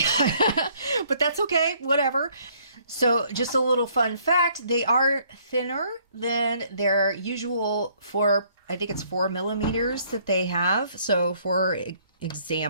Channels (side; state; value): both; inverted; correlation -0.63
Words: But that's okay, whatever. So just a little fun fact, they are thinner than their usual I think it's 4 millimeters that they have. So for